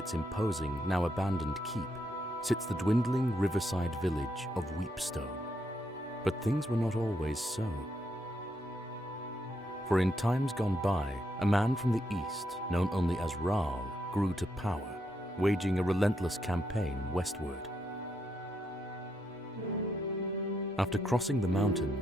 imposing, now abandoned keep, sits the dwindling riverside village of Weepstone. But things were not always so. For in times gone by, a man from the east, known only as Raal, grew to power, waging a relentless campaign westward. After crossing the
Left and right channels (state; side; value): noise; right; hum, 28 dB below the sound